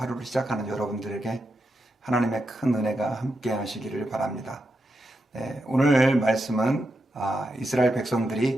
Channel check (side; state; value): both; normal; correlation 0.86